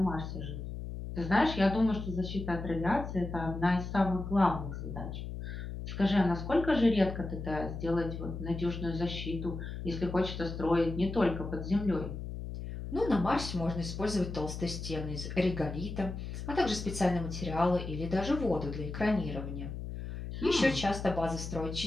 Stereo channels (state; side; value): noise; left; hum, 7 dB below the sound